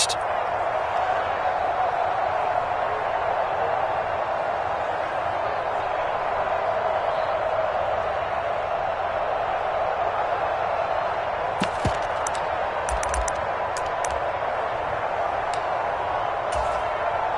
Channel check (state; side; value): identical; both; correlation 1.00